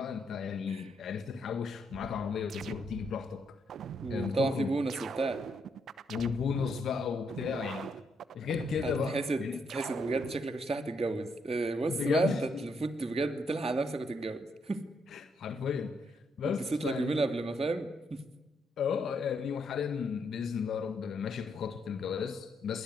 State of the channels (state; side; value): normal; both; correlation 0.76